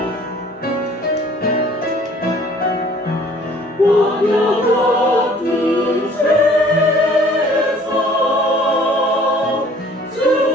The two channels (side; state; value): both; normal; correlation 0.54